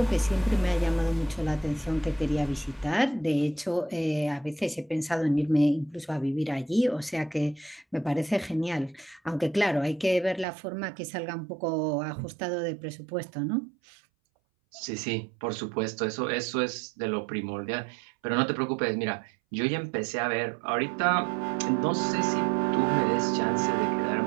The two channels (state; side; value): drops out; left; at 10.5 s